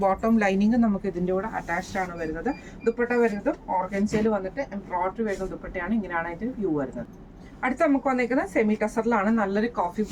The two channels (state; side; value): identical; both; correlation 1.00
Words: ബോട്ടം ലൈനിങ് നമുക്ക് ഇതിൻ്റെ കൂടെ അറ്റാച്ച്ഡ് ആണ് വരുന്നത്. ദുപ്പട്ട വരുന്നതും ഓർഗൻസയിൽ വന്നിട്ട് എംബ്രോയിഡറി വരുന്ന ദുപ്പട്ടയാണ്. ഇങ്ങനെയാണ് അതിൻ്റെ വ്യൂ വരുന്നത്. അടുത്ത നമുക്ക് വന്നേക്കുന്നത് സെമി ടസറിലാണ്. നല്ലൊരു കോഫി